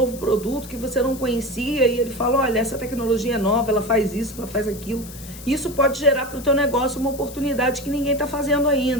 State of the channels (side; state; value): left; noise; hiss, 16 dB below the sound